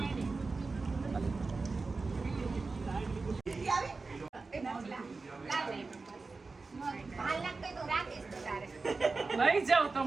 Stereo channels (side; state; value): left; quieter; 4.0 dB